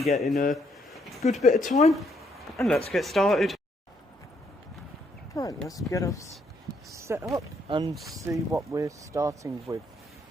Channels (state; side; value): normal; both; correlation 0.72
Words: in a good bit of time, and let's get started. Right, let's get us set up and see what we're starting with.